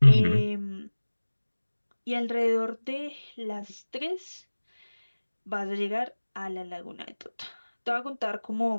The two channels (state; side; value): inverted; both; correlation -1.00